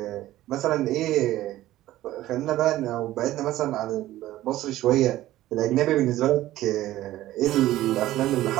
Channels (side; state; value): left; quieter; 15.0 dB